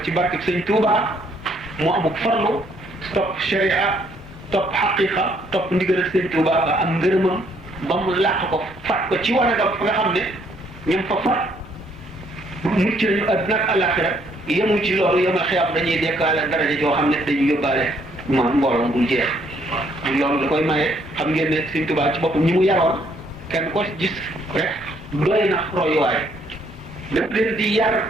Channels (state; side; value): normal; both; correlation 0.68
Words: ci barke sëñ Tuubaa mu amuk farlu topp sharia topp xaqiqa topp ndigal sëñ Tuubaa ba am ngërëmam ba mu làq ko fat ko ci wanagam fa nga xam ne ñoom fa fat mucc nañu àdduna ak àllaaxira yemu ci loolu yemal xiyaam dañuy dekkaale daraja joo xam ne dañuy yóbbaale mbooloo bul jeex loolu da koy maye xam ngeen ne sëñ Tuubaa ci boppam ñi mu yaroon kenn ko gis rek doy na royuwaay daf leen di yar